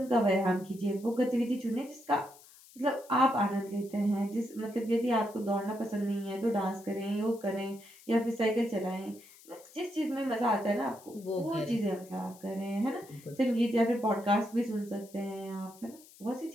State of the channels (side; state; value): left; noise; hiss, 23 dB below the sound